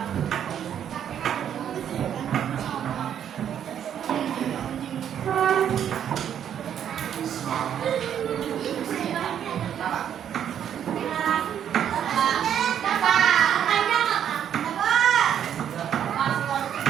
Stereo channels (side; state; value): left; quieter; 9.4 dB